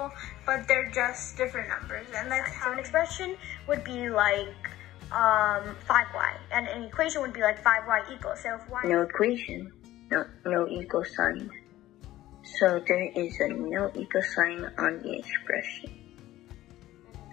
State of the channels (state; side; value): quieter; right; 15.1 dB